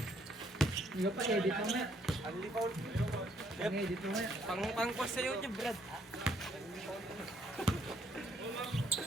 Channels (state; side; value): normal; both; correlation 0.68